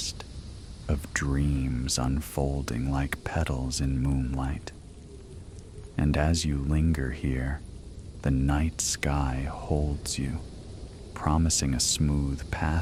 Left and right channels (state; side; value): identical; both; correlation 1.00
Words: of dreams unfolding like petals in moonlight. And as you linger here, the night sky holds you, promising a smooth